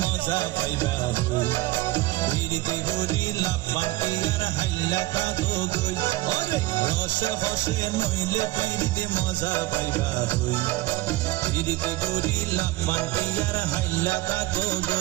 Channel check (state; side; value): quieter; left; 18.4 dB